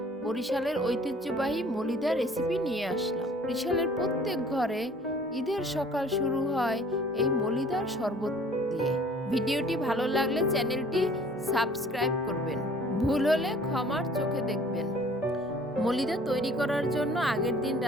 বরিশালের ঐতিহ্যবাহী মলিদা রেসিপি নিয়ে আসলাম। বরিশালের প্রত্যেক ঘরে ঈদের সকাল শুরু হয় এই মলিদার শরবত দিয়ে। ভিডিওটি ভালো লাগলে চ্যানেলটি সাবস্ক্রাইব করবেন। ভুল হলে ক্ষমার চোখে দেখবেন। মলিদা তৈরি করার জন্য আগের দিন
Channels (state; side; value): normal; both; correlation 0.53